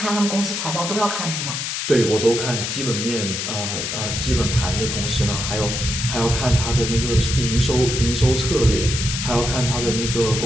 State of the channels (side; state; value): left; noise; hiss, 3 dB below the sound